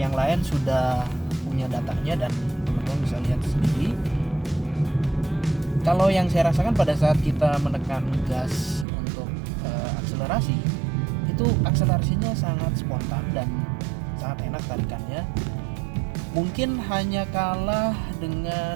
lain sudah punya datanya dan teman-teman bisa lihat sendiri. Kalau yang saya rasakan pada saat kita menekan gas untuk akselerasi, itu akselerasinya sangat spontan dan sangat enak tarikannya. Mungkin hanya kalah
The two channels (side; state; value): left; drops out; at 8.8 s